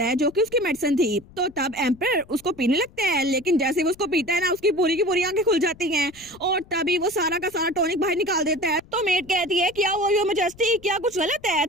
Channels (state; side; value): noise; left; rumble, 23 dB below the sound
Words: है जो कि उसकी मेडिसिन थी। तो तब एम्पर उसको पीने लगता है, लेकिन जैसे वो उसको पीता है ना उसकी पूरी की पूरी आंखें खुल जाती हैं, और तभी वो सारा का सारा टॉनिक बाहर निकाल देता है। तो मेट कहती है क्या वो योर मैजेस्टी क्या कुछ गलत है।